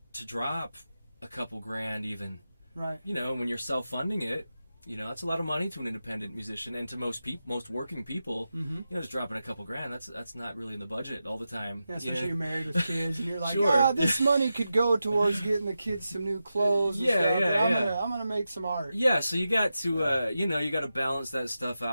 to drop a couple grand even. Right. When you're self-funding it, that's a lot of money to an independent musician, and to most working people, just dropping a couple grand, that's not really in the budget all the time. Yeah, especially you're married with kids, and you're like, Sure. this money could go towards getting the kids some new clothes. And stuff, I'm gonna make some art. Yeah, so you got to, you got to balance that stuff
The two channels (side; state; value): both; inverted; correlation -0.91